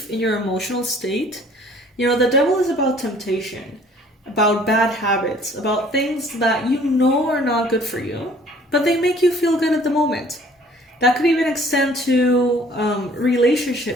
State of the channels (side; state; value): both; normal; correlation 0.55